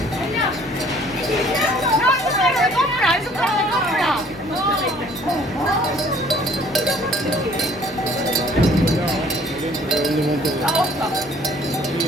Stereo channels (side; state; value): both; normal; correlation 0.56